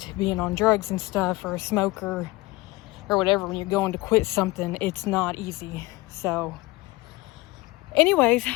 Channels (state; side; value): quieter; right; 21.0 dB